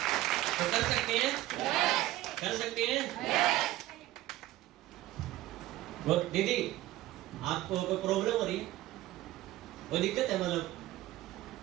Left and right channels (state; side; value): quieter; left; 15.9 dB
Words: तो कर सकते हैं? कर सकते हैं? दीदी आपको कोई प्रॉब्लम हो रही है, कोई दिक्कत है? मतलब